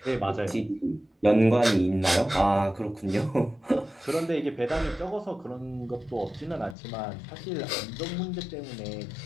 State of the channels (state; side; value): drops out; right; at 6.8 s